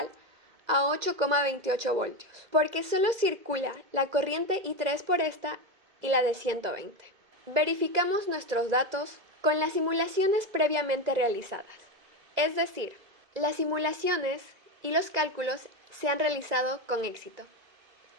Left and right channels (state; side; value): late; left; 2.0 ms